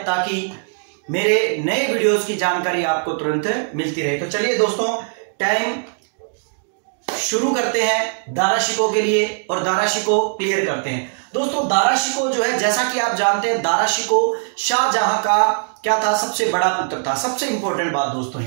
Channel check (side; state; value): left; silent; 66 dB below the other